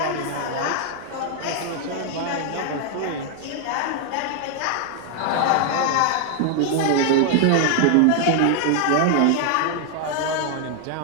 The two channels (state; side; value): different; both; correlation 0.00